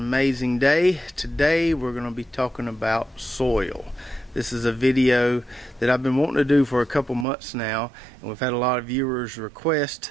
day. Today we're going to be talking about soil. This is a video that I've been wanting to do for a couple months now, and we've had a lot of viewers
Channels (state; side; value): drops out; left; at 7.2 s